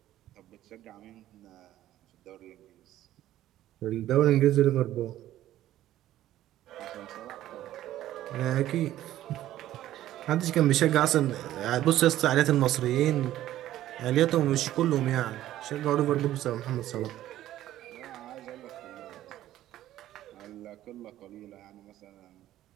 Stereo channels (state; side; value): quieter; left; 13.6 dB